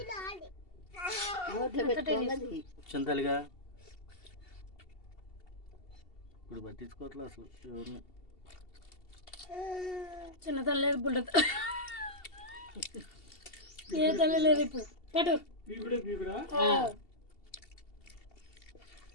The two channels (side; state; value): right; late; 2.7 ms